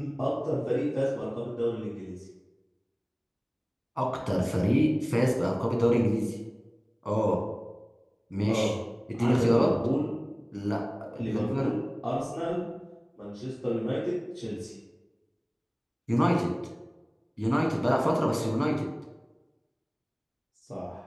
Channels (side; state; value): both; identical; correlation 1.00